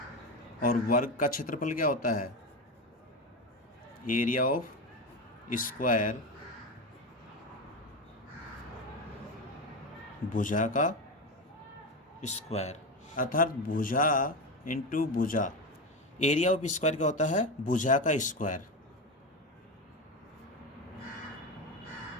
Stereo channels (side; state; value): both; normal; correlation 0.17